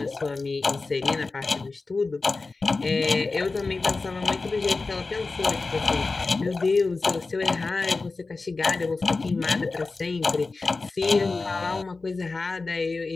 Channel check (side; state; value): right; quieter; 3.8 dB